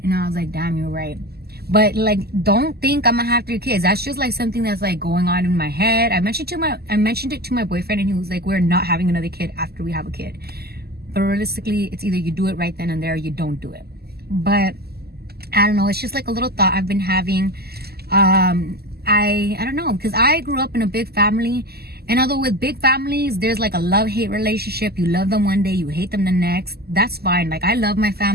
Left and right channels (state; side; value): late; left; 0.46 ms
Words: And I was like, damn, you're right. But like, don't think I'm going to have 3 kids. That's just like something that's like going on in my head. I mentioned it to my boyfriend, and he was like, we're not having another kid after we have a kid. But realistically, it's either you do it right then and there or you don't do it. But I don't know, it's just like a little thought I've been having. I don't know, because I grew up in a big family, And although with big families, there's like a love-hate relationship. You love them one day, you hate them the next. That's fine. Like, I love my